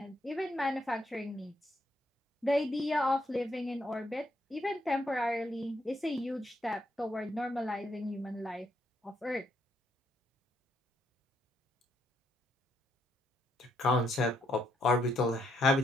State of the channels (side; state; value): both; normal; correlation 0.75